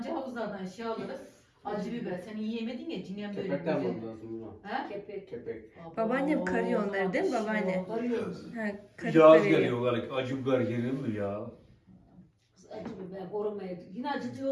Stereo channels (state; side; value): identical; both; correlation 1.00